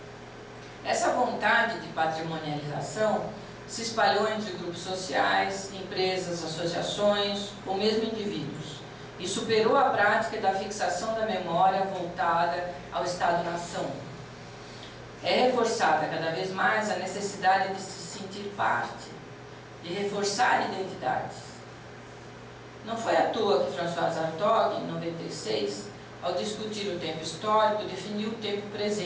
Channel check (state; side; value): identical; both; correlation 1.00